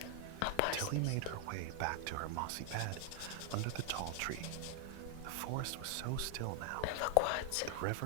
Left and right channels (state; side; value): different; both; correlation 0.00